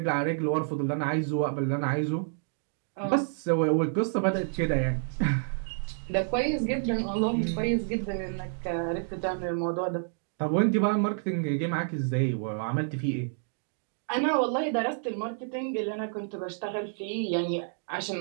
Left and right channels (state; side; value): silent; left; digital silence